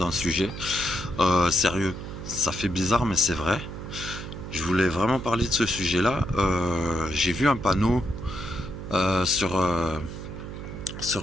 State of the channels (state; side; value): noise; right; hum, 9 dB below the sound